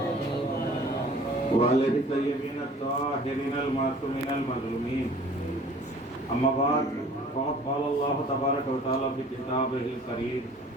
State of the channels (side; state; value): both; normal; correlation 0.50